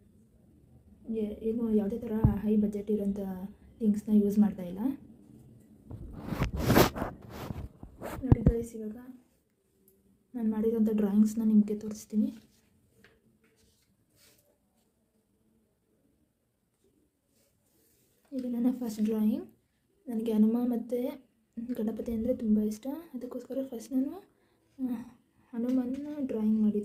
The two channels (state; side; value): identical; both; correlation 1.00